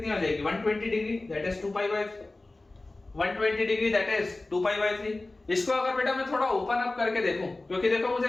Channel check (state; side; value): quieter; right; 3.0 dB